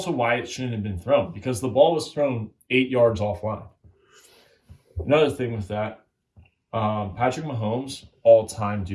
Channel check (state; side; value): identical; both; correlation 1.00